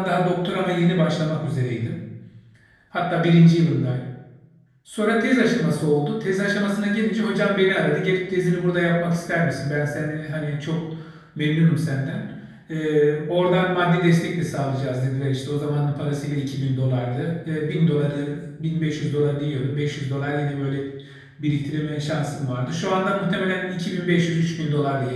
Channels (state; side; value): identical; both; correlation 1.00